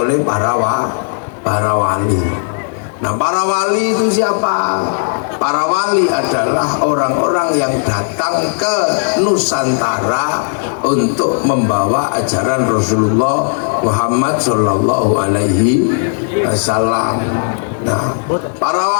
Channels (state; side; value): silent; right; digital silence